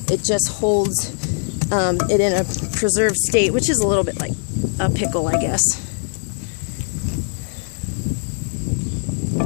It just holds it in a preserved state, which is a little bit like a pickle, I guess.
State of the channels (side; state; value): right; silent; digital silence